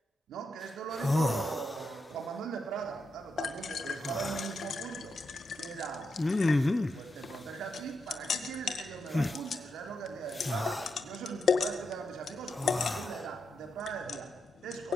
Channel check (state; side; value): normal; both; correlation 0.84